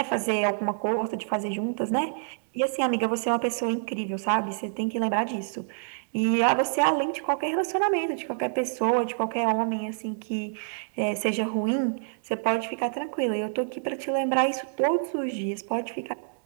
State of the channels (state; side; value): silent; left; digital silence